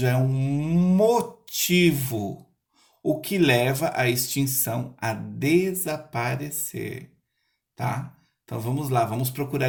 é um motivo, o que leva à extinção a desaparecer, tá? Então vamos lá, vamos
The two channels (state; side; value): identical; both; correlation 1.00